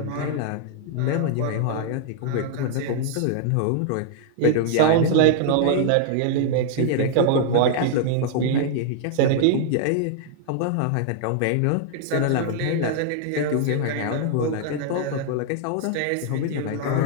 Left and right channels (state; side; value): different; both; correlation -0.01